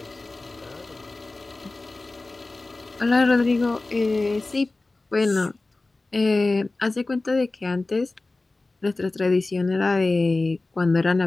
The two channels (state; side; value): quieter; right; 3.2 dB